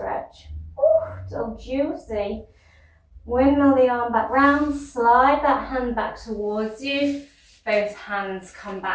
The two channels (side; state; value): both; identical; correlation 1.00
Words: Ooh, so juicy. Windmill the arm back round, slide that hand back towards you. Both hands come